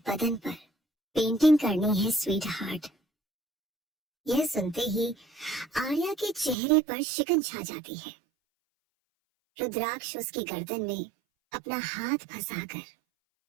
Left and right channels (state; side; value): drops out; left; at 6.6 s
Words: बदन पर पेंटिंग करनी है स्वीट हार्ट। यह सुनते ही आर्या के चेहरे पर शिकन छा जाती है। रुद्राक्ष उसकी गर्दन में अपना हाथ फंसाकर